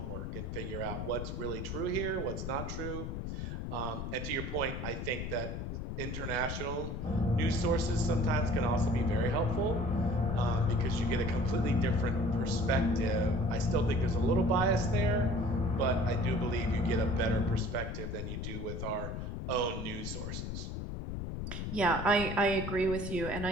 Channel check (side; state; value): left; noise; rumble, 5 dB below the sound